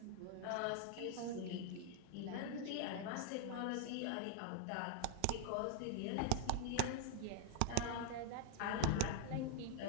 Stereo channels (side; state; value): both; different; correlation 0.00